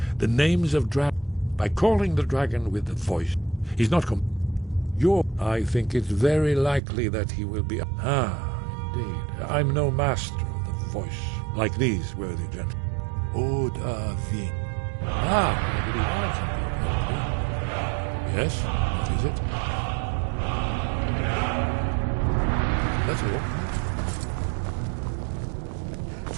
The names of dragons. By calling the dragon with the voice, he's not I think it's very likely that he will be... Indeed. I'm no master of the voice, like these worthy gentlemen. Odavin. Maybe I can be. Yes, what is it? That's all.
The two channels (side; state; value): left; drops out; at 6.8 s